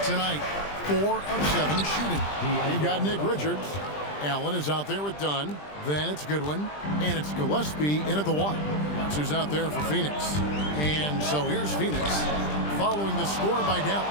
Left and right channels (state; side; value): late; right; 20 ms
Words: tonight. 4 of 7 shooting. You've got Nick Richards. Allen is out there with Dunn. Then it's Goodwin. And it's Gillespie in at the 1. That's who's out there for Phoenix. And so here's Phoenix following the score by